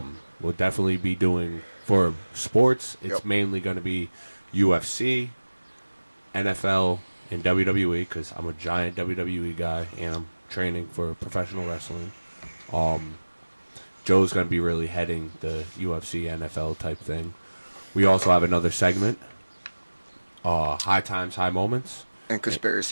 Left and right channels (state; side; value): inverted; both; correlation -1.00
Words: definitely be doing, for sports, it's mainly going to be UFC, NFL, and WWE, because I'm a giant WWE guy, and I'm training for professional wrestling. Joe's going to be really heading the UFC, NFL type thing. We also have another segment, High Times, High Moments. And